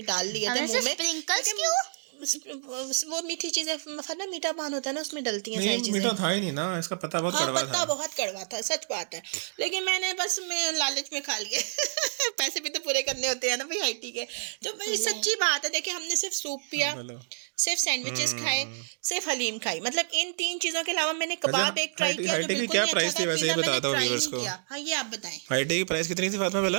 डाल लिए थे हमें मुंह में। स्प्रिंकल्स लेकिन क्यों? वो मीठी चीजें, ना मीठा पान होता है ना, उसमें डलती हैं सारी नहीं, चीजें। मीठा था ही नहीं ना, इसका पत्ता बहुत हाँ, कड़वा पत्ता था। बहुत कड़वा था, सच बात है। लेकिन मैंने बस मैं लालच में खा लिए। पैसे भी तो पूरे करने होते हैं ना भाई, IT के। तो भाई सच्ची बात है, देखिए हमने सिर्फ सूप पिया, बोलो। सिर्फ सैंडविचेस खाए, सिर्फ हलीम खाई। मतलब इन 3 चीजों के अलावा मैंने कबाब एक ट्राई किया जो हाईटी की बिल्कुल क्या नहीं प्राइस अच्छा थी था। वैसे, ये पिज़्ज़ा मैंने बताता हूँ ट्राई व्यूअर्स नहीं को। किया। हाँ, ये आप बताएं। हाईटी की प्राइस कितनी थी फातिमा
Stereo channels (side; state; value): left; silent; digital silence